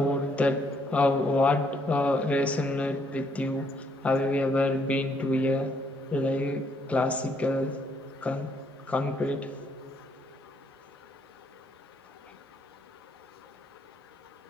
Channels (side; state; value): both; normal; correlation 0.70